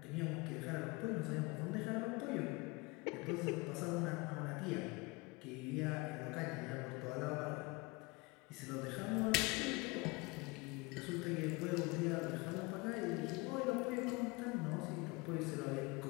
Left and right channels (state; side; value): quieter; right; 25.4 dB